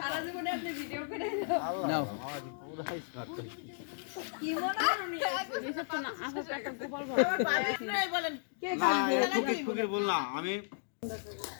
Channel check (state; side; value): silent; right; digital silence